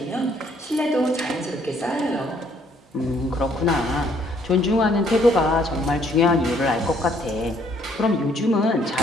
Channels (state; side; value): normal; both; correlation 0.65